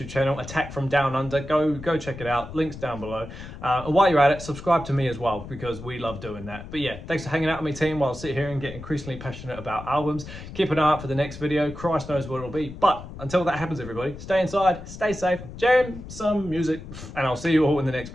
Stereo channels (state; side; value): noise; left; rumble, 13 dB below the sound